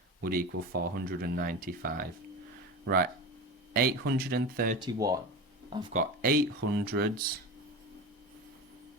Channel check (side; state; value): both; normal; correlation 0.26